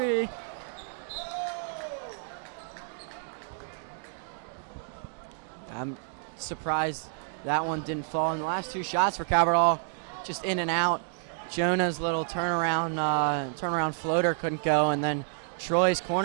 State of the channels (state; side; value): silent; left; digital silence